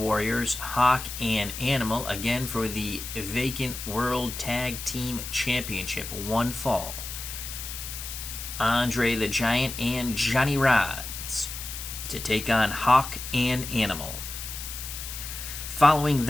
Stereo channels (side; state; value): left; noise; hiss, 8 dB below the sound